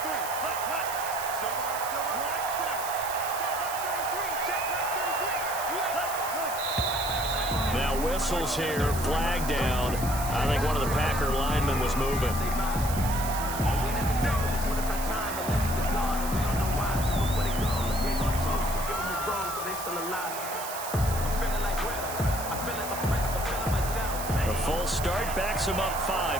Now whistles here, flag down. I think one of the Packer linemen was moving. A full start backs him up 5,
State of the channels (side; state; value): right; noise; hiss, 8 dB below the sound